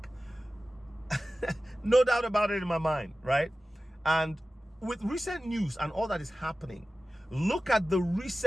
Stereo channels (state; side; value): normal; both; correlation 0.95